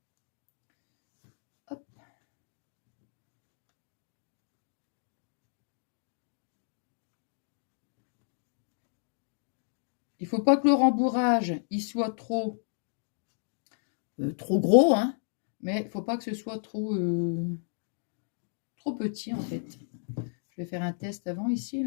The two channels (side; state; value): right; silent; digital silence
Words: Hop. Il faut pas que le rembourrage, il soit trop gros, hein. Mais il faut pas que ce soit trop petit, en fait. Je vais faire un test avant ici,